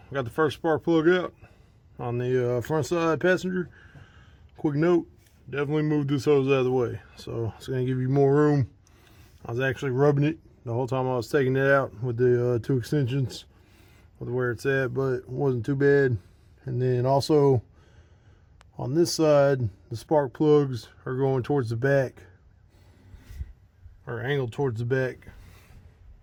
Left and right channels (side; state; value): both; identical; correlation 1.00